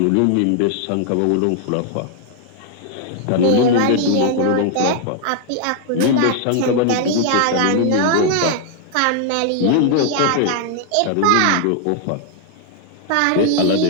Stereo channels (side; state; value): both; different; correlation 0.00